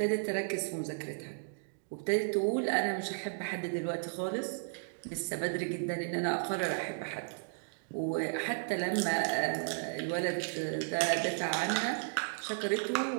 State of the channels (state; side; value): silent; left; digital silence